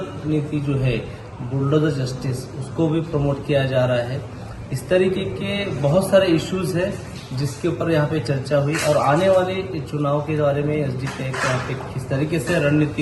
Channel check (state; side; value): identical; both; correlation 1.00